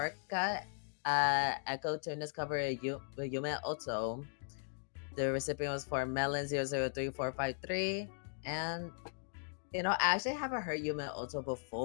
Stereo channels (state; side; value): silent; right; digital silence